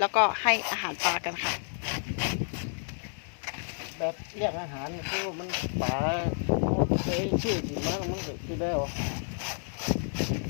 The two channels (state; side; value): silent; right; 58 dB below the other